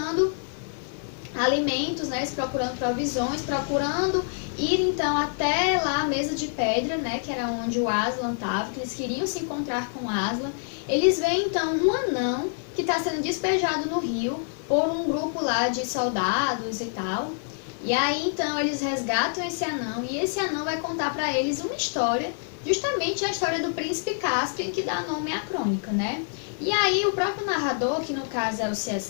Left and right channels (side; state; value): right; silent; digital silence